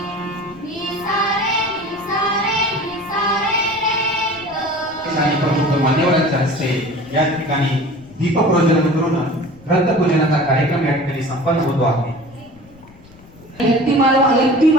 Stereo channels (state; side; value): noise; left; rumble, 24 dB below the sound